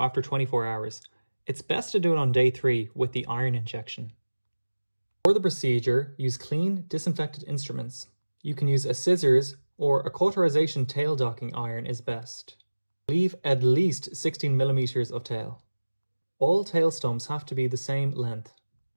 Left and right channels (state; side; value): inverted; both; correlation -1.00